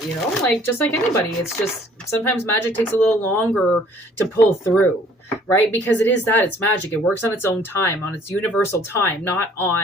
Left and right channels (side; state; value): both; normal; correlation 0.57